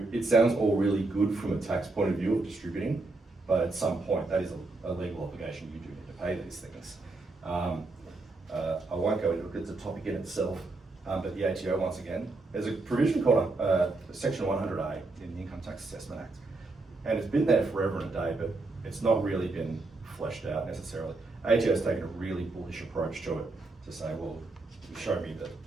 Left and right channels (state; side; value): quieter; left; 3.3 dB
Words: it sounds all really good from a tax point of view of distributing, but at some point that is a legal obligation. You do need to pay these things. I won't go into it because it's a topic in itself, but the ATO, once again, there's a provision called Section 100A in the Income Tax Assessment Act. And it's been there forever and a day, but it's not really been fleshed out necessarily. ATO has taken a really bullish approach to it to say, well, you show me that